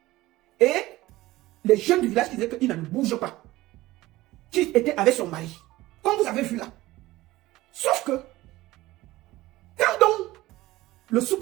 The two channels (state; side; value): quieter; left; 17.9 dB